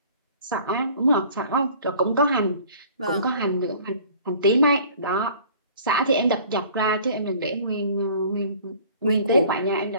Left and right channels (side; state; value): both; inverted; correlation -0.50